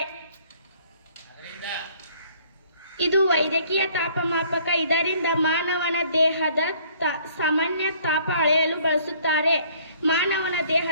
ಇದು ವೈದ್ಯಕೀಯ ತಾಪಮಾಪಕ. ಇದರಿಂದ ಮಾನವನ ದೇಹದ ಸಾಮಾನ್ಯ ತಾಪ ಅಳೆಯಲು ಬಳಸುತ್ತಾರೆ. ಮಾನವನ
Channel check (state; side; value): inverted; both; correlation -0.59